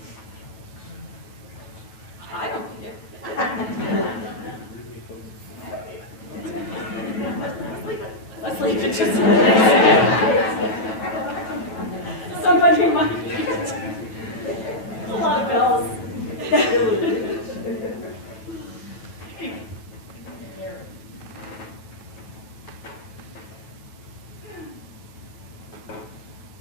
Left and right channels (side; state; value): right; late; 9.2 ms